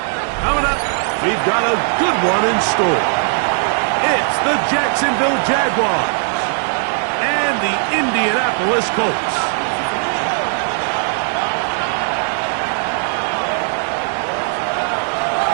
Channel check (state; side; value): silent; left; 58 dB below the other